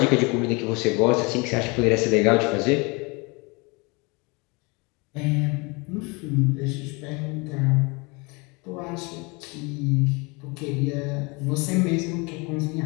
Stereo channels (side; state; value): right; quieter; 28.2 dB